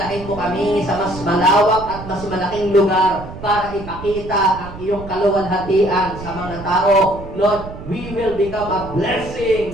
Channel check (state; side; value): noise; right; rumble, 13 dB below the sound